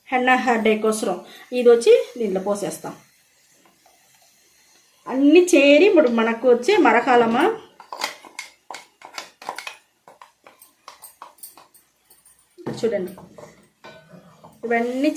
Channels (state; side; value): identical; both; correlation 1.00